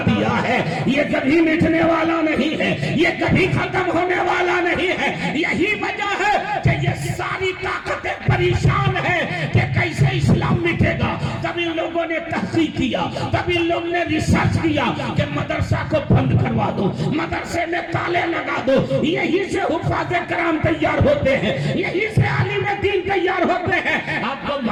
دیا ہے۔ یہ کبھی مٹنے والا نہیں ہے، یہ کبھی ختم ہونے والا نہیں ہے۔ یہی وجہ ہے کہ یہ ساری طاقتیں پریشان ہیں کہ کیسے اسلام مٹے گا۔ تب ان لوگوں نے تحقیق کیا، تب ان لوگوں نے ریسرچ کیا کہ مدرسہ کو بند کروا دو، مدرسے میں تالے لگا دو، یہی سے حفاظ کرام تیار ہوتے ہیں، یہی سے عالم دین تیار ہوتے ہیں۔ آپ کو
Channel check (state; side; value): identical; both; correlation 1.00